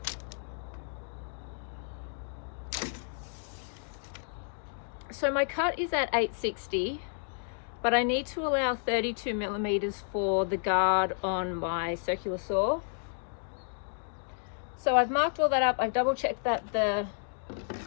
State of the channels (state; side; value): silent; right; digital silence